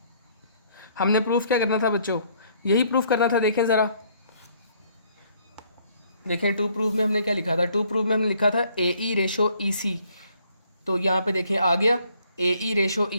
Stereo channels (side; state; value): both; inverted; correlation -0.64